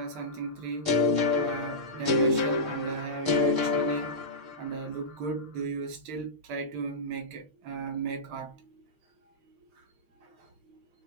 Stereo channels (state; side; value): late; left; 6.4 ms